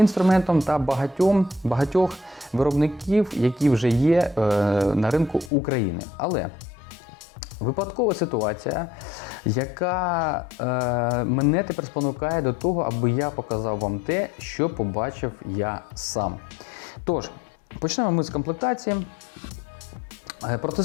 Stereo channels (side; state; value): right; drops out; at 5.5 s